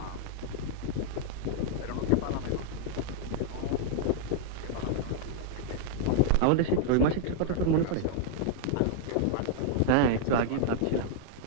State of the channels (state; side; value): different; both; correlation -0.01